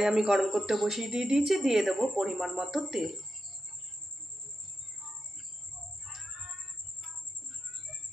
আমি গরম করতে বসিয়ে দিয়েছি। দিয়ে দেবো পরিমাণ মতো তেল।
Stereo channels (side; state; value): both; normal; correlation 0.88